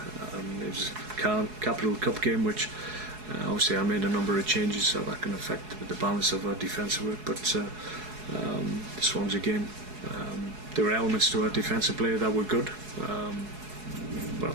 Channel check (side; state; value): left; late; 4.7 ms